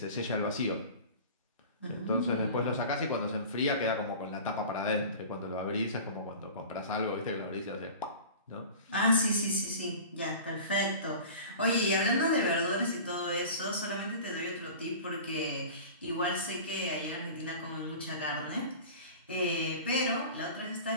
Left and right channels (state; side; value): inverted; both; correlation -0.38